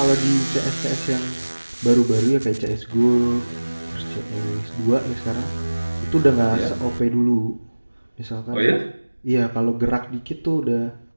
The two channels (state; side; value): inverted; both; correlation -1.00